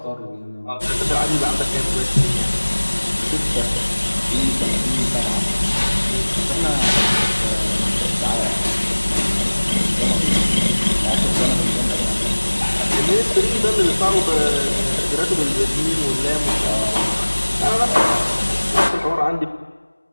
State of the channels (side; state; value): both; inverted; correlation -1.00